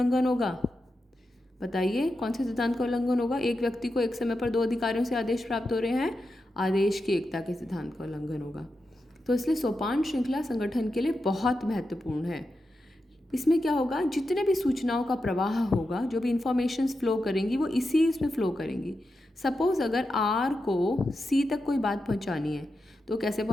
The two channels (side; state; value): both; normal; correlation 0.88